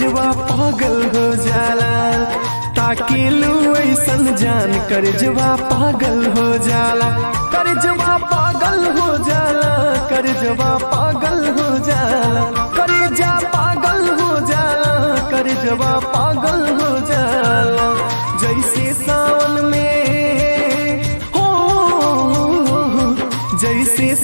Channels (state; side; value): inverted; both; correlation -1.00